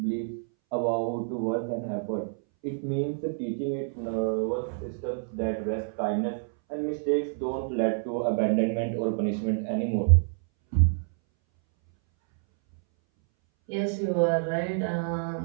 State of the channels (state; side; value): silent; left; 59 dB below the other